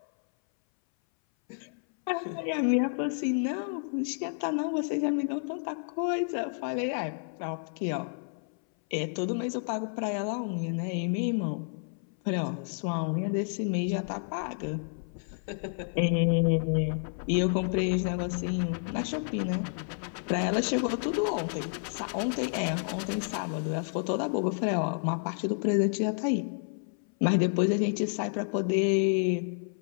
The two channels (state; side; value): silent; right; 58 dB below the other